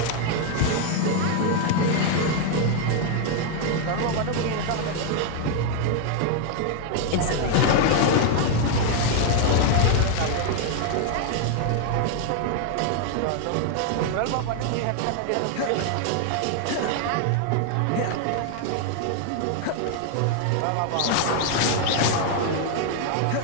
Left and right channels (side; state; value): both; different; correlation 0.00